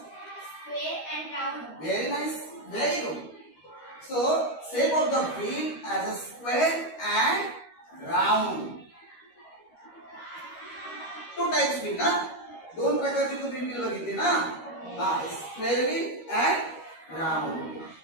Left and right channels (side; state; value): right; late; 13 ms